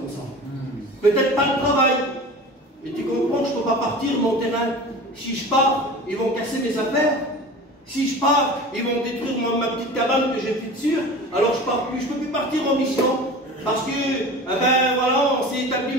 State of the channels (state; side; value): normal; both; correlation 0.36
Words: ça. Peut-être pas le travail. Et tu comprends que je ne peux pas partir mon terrain. Si je pars, ils vont casser mes affaires. Si je pars, ils vont détruire ma petite cabane que j'ai fait dessus. Alors je pars plus, je ne peux plus partir en mission. Parce que, ben voilà, on s'est établi